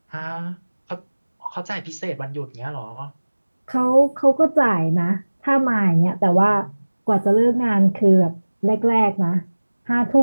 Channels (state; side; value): inverted; both; correlation -1.00